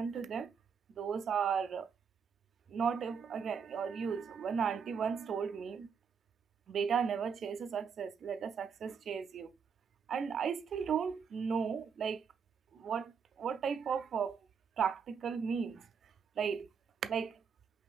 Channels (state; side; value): quieter; left; 6.4 dB